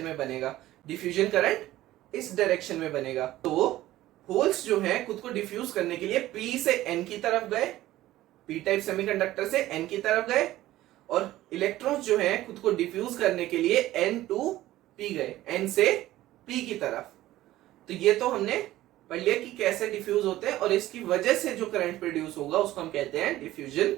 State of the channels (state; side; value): quieter; left; 15.4 dB